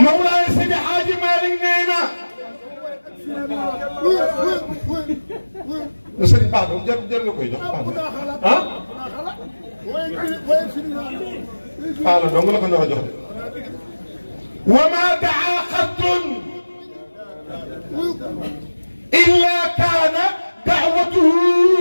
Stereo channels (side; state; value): both; inverted; correlation -1.00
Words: Mawlaay Seydi Hadji Malick nee na sëriñ baax na jar nga koy jox baax na ah la dong la ko nar a jox de wa ma daa xattun illa kaana daawatuhu